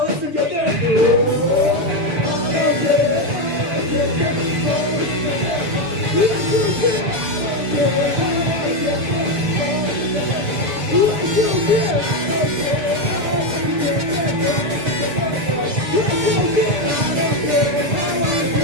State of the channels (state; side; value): late; left; 7.4 ms